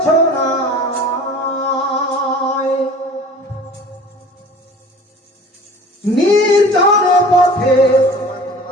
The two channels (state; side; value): normal; both; correlation 0.44